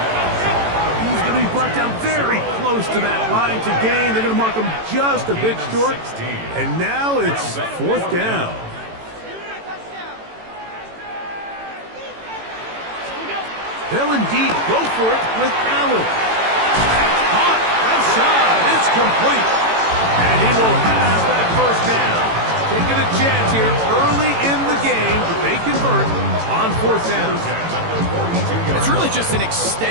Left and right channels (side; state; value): left; late; 18 ms